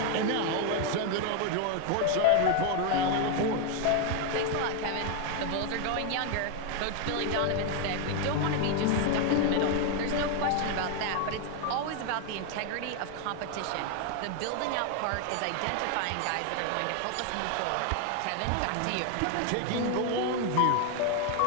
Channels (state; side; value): different; both; correlation 0.01